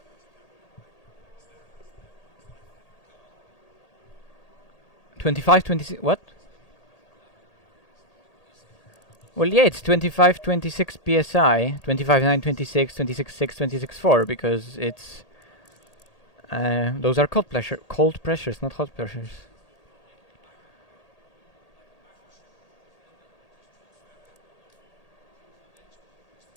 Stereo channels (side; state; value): right; late; 1.8 ms